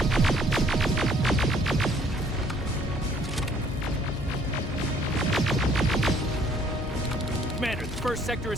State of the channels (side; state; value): left; noise; hum, 10 dB below the sound